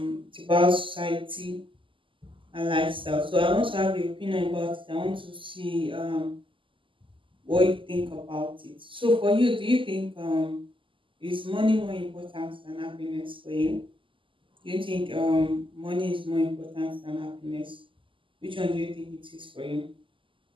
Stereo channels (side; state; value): left; late; 0.25 ms